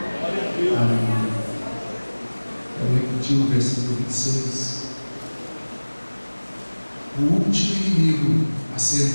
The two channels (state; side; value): inverted; both; correlation -1.00